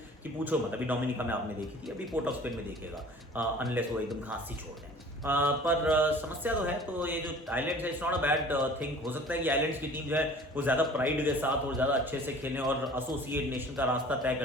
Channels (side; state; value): both; normal; correlation 0.47